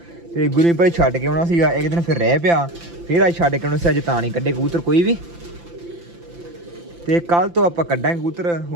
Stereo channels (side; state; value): left; late; 5.8 ms